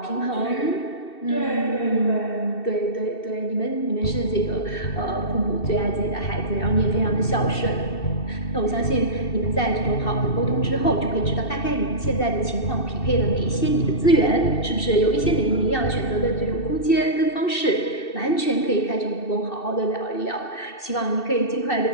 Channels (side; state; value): right; late; 2.7 ms